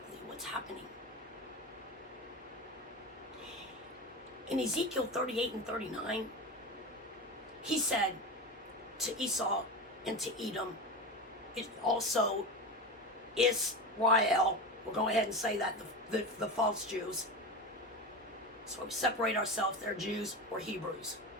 what's happening. In Ezekiel 38 and 39, he said to Esau and to Edom, it also Israel, we'll go ahead and say that, the false Jews. So we separate ourselves, they're Jews or Hebrews.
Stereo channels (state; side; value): normal; both; correlation 0.24